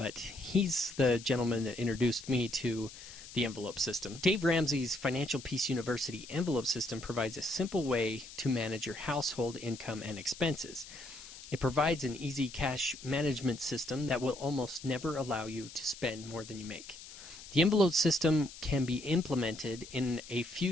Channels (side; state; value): left; noise; hiss, 15 dB below the sound